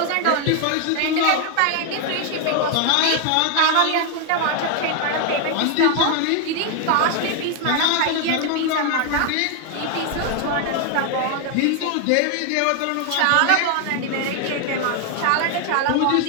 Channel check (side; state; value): both; different; correlation 0.00